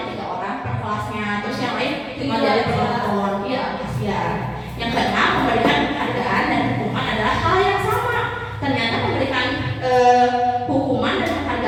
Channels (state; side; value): identical; both; correlation 1.00